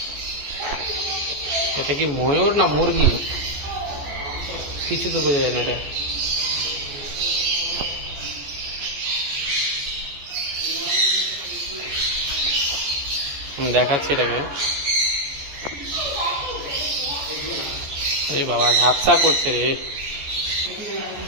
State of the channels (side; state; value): left; late; 14 ms